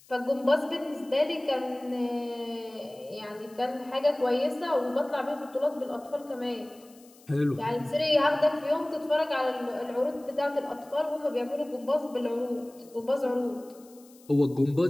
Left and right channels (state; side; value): noise; left; hiss, 26 dB below the sound